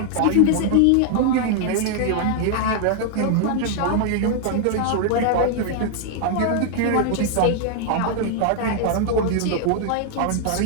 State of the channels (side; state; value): both; different; correlation 0.00